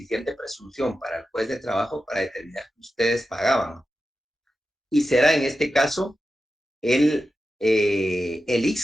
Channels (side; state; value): both; normal; correlation 0.91